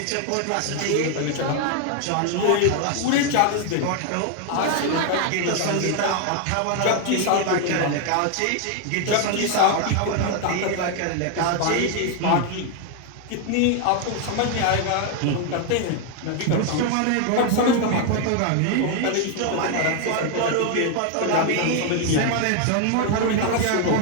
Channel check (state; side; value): different; both; correlation 0.00